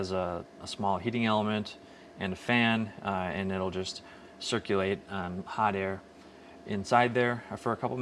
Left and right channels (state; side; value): identical; both; correlation 1.00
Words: a small heating element and a fan, and it'll just circulate hot air inside there for a couple